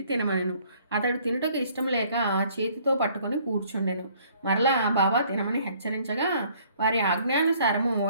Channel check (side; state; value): both; inverted; correlation -0.60